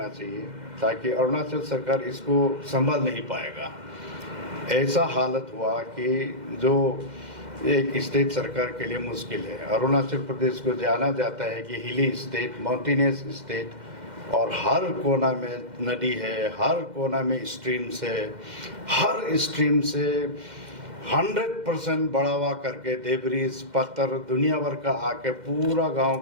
चाहिए ताकि अरुणाचल सरकार इसको संभाल नहीं पाएगा। ऐसा हालत हुआ कि जो एक स्टेट सरकार के लिए मुश्किल है। अरुणाचल प्रदेश को जाना जाता है कि हिली स्टेट, माउंटेनियस स्टेट और हर कोना में नदी है, हर कोना में स्ट्रीम्स है, हर स्ट्रीम से 100% बढ़ावा करके डेब्रिस, पत्थर दुनिया भर का आके पूरा गांव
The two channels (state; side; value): late; left; 2.1 ms